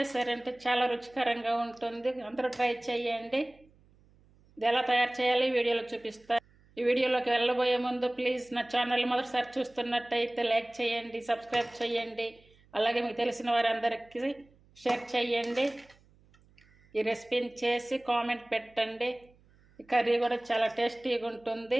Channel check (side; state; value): right; noise; hum, 30 dB below the sound